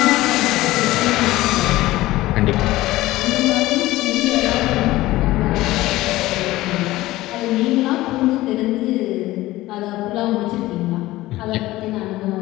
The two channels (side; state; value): right; quieter; 17.4 dB